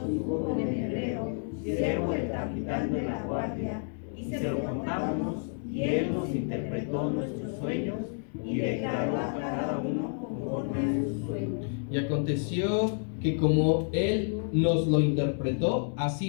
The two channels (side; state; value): right; silent; 58 dB below the other